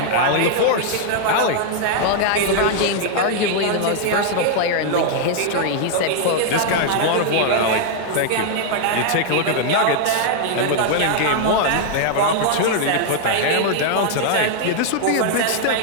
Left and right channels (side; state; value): both; different; correlation 0.00